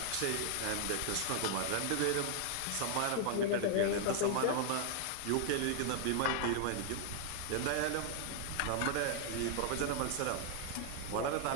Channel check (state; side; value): different; both; correlation 0.00